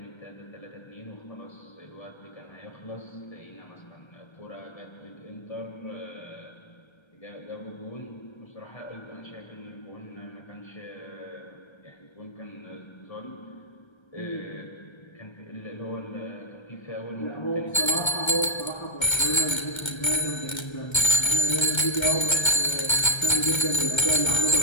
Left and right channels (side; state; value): right; late; 1.3 ms